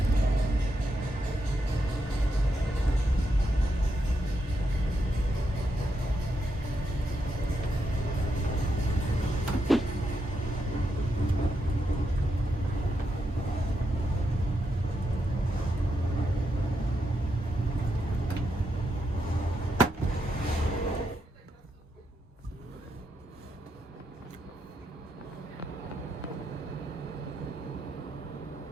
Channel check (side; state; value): both; normal; correlation 0.82